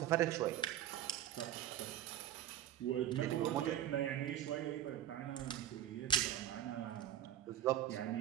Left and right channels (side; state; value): left; quieter; 11.5 dB